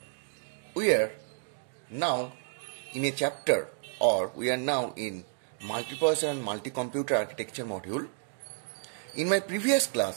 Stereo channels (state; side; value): silent; left; digital silence